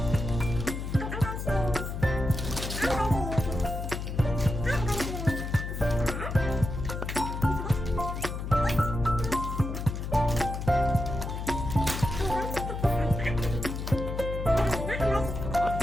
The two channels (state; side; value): noise; left; hum, 5 dB below the sound